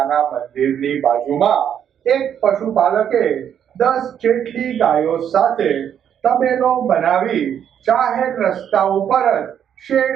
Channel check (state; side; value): quieter; left; 9.0 dB